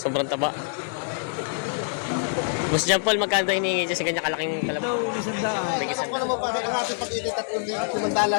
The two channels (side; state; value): right; silent; 61 dB below the other